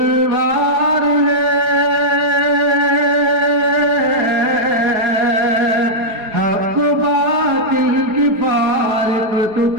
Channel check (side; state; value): left; late; 4.8 ms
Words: ہے، حق و باطل کی فارق تو